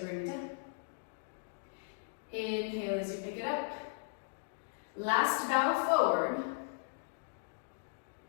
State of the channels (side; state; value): right; silent; digital silence